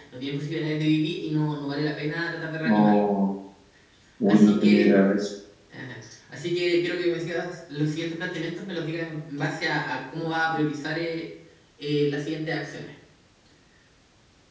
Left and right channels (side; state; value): both; identical; correlation 1.00